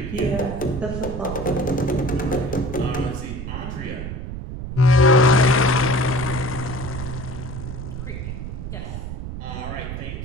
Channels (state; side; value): noise; right; rumble, 7 dB below the sound